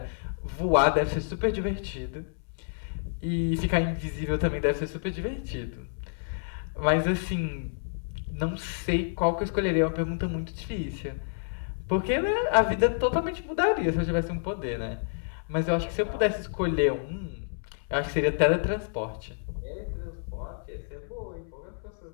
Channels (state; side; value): silent; right; 59 dB below the other